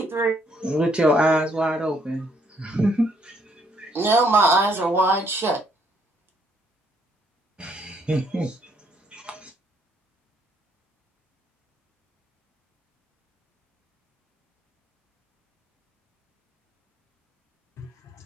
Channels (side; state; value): both; normal; correlation 0.69